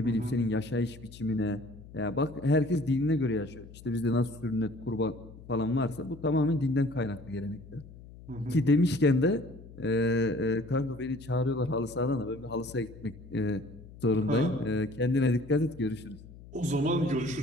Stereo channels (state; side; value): noise; left; hum, 18 dB below the sound